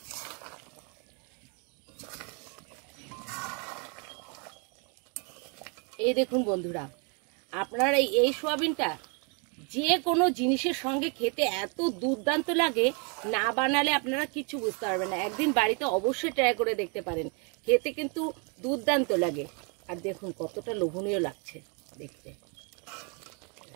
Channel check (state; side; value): quieter; left; 36.0 dB